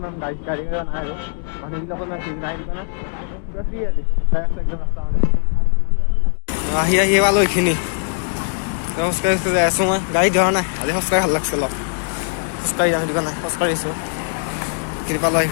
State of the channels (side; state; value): right; silent; digital silence